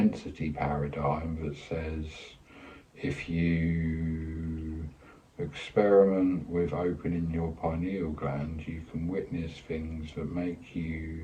paradigm that says if you experiment with opening your pineal gland, you can witness things that make you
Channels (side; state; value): both; identical; correlation 1.00